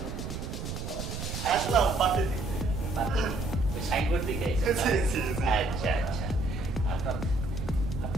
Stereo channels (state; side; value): noise; right; rumble, 5 dB below the sound